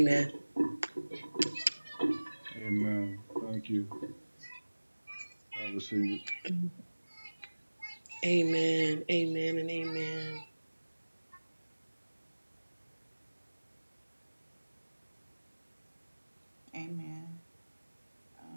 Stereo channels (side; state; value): both; inverted; correlation -1.00